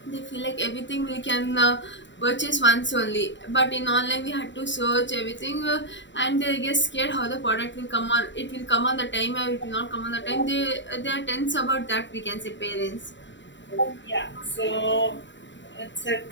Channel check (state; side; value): late; right; 0.53 ms